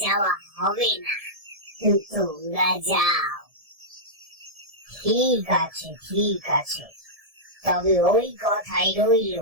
যাওয়া হবে না, তোমরা যাও। ঠিক আছে, ঠিক আছে, তবে ওই কথাই রইল,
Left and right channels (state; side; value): late; left; 1.7 ms